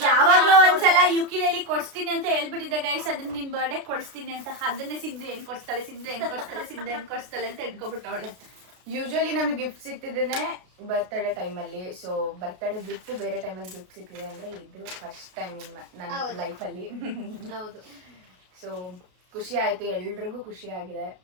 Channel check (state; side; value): late; left; 33 ms